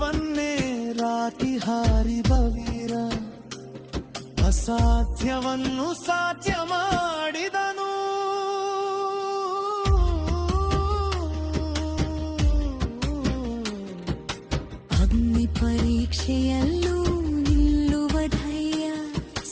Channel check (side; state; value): both; identical; correlation 1.00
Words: ರಾತಿ ಹಾರಿದ ವೀರ, ಅಸಾಧ್ಯವನ್ನು ಸಾಧ್ಯ ಮಾಡಿದನು. ಅಗ್ನಿ ಪರೀಕ್ಷೆಯಲ್ಲೂ ನಿಲ್ಲುವ ಧೈರ್ಯ,